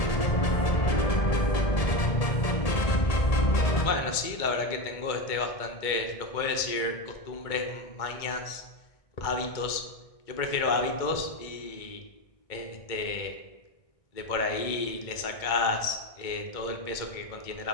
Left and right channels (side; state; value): right; late; 2.2 ms